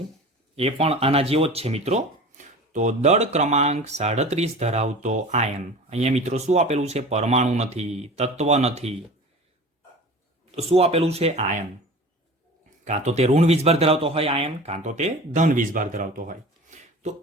એ પણ આના જેવો જ છે મિત્રો. તો દળ ક્રમાંક 37 ધરાવતો આયન. અહીંયા મિત્રો શું આપેલું છે? પરમાણુ નથી, તત્વ નથી, તો શું આપેલું છે? આયન. કાં તો તે ઋણ વીજભાર ધરાવતો હોય આયન, કાં તો તે ધન વીજભાર ધરાવતો હોય. તો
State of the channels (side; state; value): both; normal; correlation 0.38